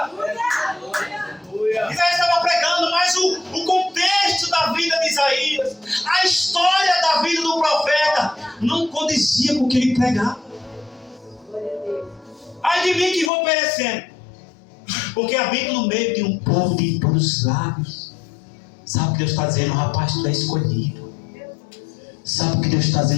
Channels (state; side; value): drops out; right; at 13.3 s